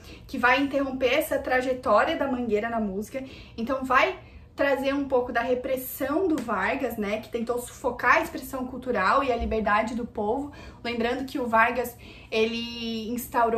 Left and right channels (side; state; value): both; identical; correlation 1.00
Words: que vai interromper essa trajetória da Mangueira na música. Então vai trazer um pouco da repressão do Vargas, né, que tentou sufocar a expressão cultural e a liberdade do povo. Lembrando que o Vargas, ele